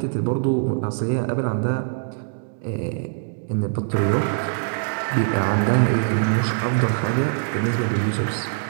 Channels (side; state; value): left; silent; digital silence